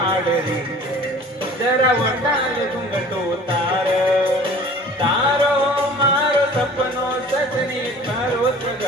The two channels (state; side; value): normal; both; correlation 0.46